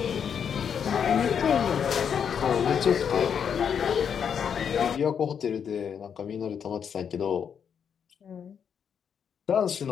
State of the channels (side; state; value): right; quieter; 7.5 dB